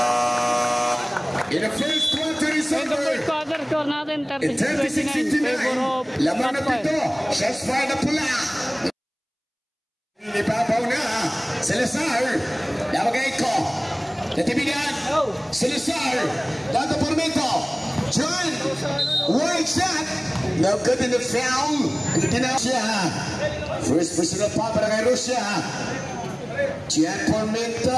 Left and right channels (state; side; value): identical; both; correlation 1.00